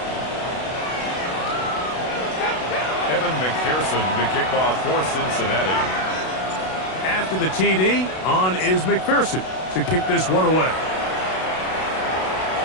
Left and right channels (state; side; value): late; right; 32 ms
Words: Evan McPherson to kick off for Cincinnati. After the TD, on is McPherson to kick this one away.